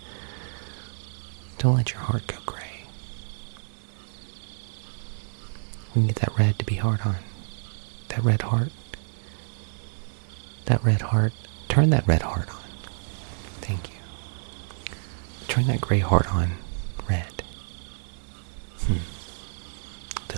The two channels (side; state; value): left; silent; digital silence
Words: Don't let your heart go gray. We need that red to be hard on. That red heart. That red heart. Turn that red heart on. Thank you. Turn that gray heart on red.